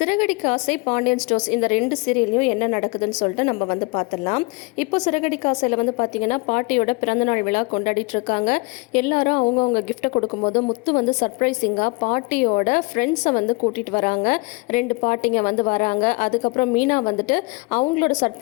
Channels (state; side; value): quieter; right; 28.4 dB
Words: ஆசை பாண்டியன் ஸ்டோர்ஸ் இந்த ரெண்டு சீரியல்லையும் என்ன நடக்குதுன்னு சொல்லிட்டு நம்ம பார்த்துடலாம். இப்போ சிறகடிக்க ஆசையில் பார்த்தீங்கன்னா பாட்டியோட பிறந்தநாள் விழா கொண்டாடிட்டு இருக்காங்க. எல்லாரும் அவங்கவுங்க கிஃப்ட்டை கொடுக்கும்போது முத்து சர்ப்ரைசிங்காக பாட்டியோட ஃப்ரெண்ட்ஸை கூட்டிகிட்டு வராங்க. ரெண்டு பாட்டிங்க வராங்க. அதுக்கப்புறம் மீனா அவங்களோட